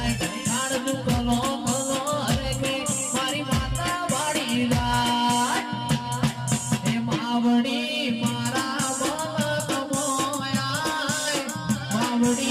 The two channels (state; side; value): identical; both; correlation 1.00